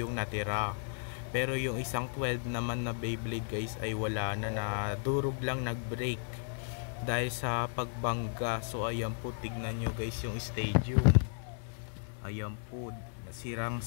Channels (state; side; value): silent; right; 55 dB below the other